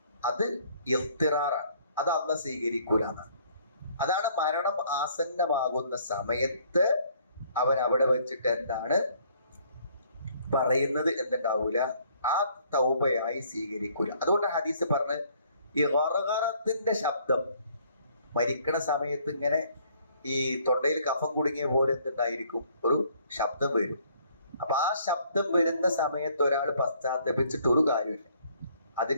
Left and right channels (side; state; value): both; inverted; correlation -0.62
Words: അത് ഇഖ്തിറാറാണ്. അത് അള്ളാഹ് സ്വീകരിക്കൂല എന്നാണ്. അതാണ് മരണം ആസന്നമാകുന്ന സമയത്ത് അവൻ അവിടെ വെച്ചിട്ട് എന്താണ് പറയുന്നത് എന്നുണ്ടാവൂല, ആ തൗബയായി സ്വീകരിക്കൂല. അതുകൊണ്ട് ഹദീസ് പറഞ്ഞ് ഈ ഗർഗറത്തിന്റെ ശബ്ദം മരിക്കണ സമയത്ത് ഇങ്ങനെ ഈ തൊണ്ടയിൽ കഫം കുടുങ്ങിയ പോലെ എന്തുണ്ടായിരിക്കും? ഒരു ശബ്ദം വരും. അപ്പൊ ആ ശബ്ദം വരുന്ന സമയത്ത് ഒരാൾ പശ്ചാത്തപിച്ചിട്ട് ഒരു കാര്യമില്ല.